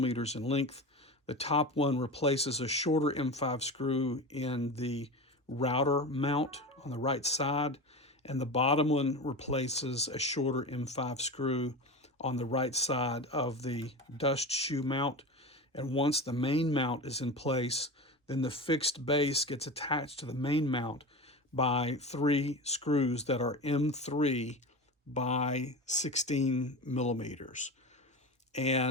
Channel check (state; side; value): normal; both; correlation 0.27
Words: in length. The top one replaces a shorter M5 screw in the router mount on the right side, and the bottom one replaces a shorter M5 screw on the right side of the dust shoe mount. And once the main mount is in place, then the fixed base gets attached to the main mount by 3 screws that are M3 by 16 millimeters.